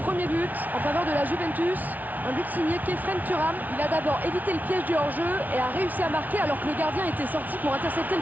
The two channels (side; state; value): left; late; 0.078 ms